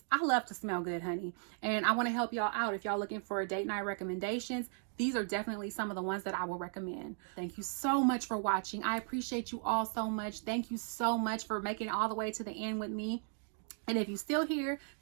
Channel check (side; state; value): left; silent; 54 dB below the other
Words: I love to smell good, honey. And I want to help y'all out. If y'all looking for date night recommendations, these are definitely some of the ones that I will recommend. Thank you so much for watching. I appreciate you all so much. Thank you so much for making it all the way to the end with me. And if you're still here,